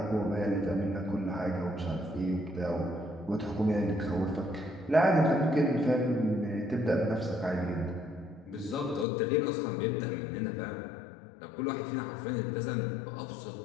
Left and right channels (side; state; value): right; drops out; at 9.1 s